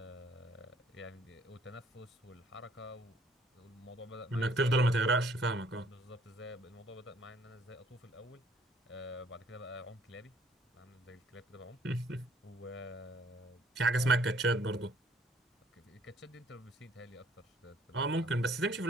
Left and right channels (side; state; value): both; normal; correlation 0.61